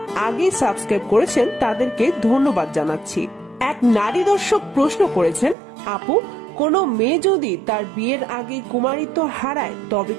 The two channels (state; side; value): drops out; left; at 5.6 s